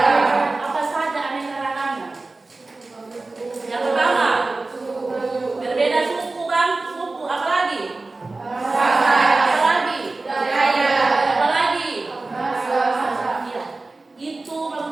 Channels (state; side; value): quieter; left; 3.4 dB